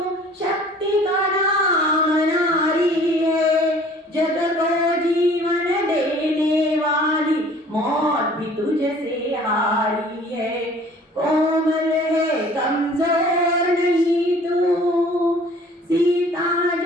शक्ति का नाम नारी है, जग को जीवन देने वाली मौत भी तुझसे हारी है. कोमल है कमजोर नहीं तू, सीता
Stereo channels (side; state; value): both; normal; correlation 0.51